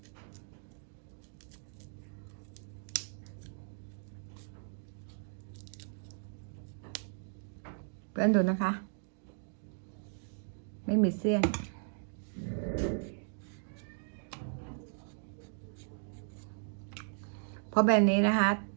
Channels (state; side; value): silent; left; digital silence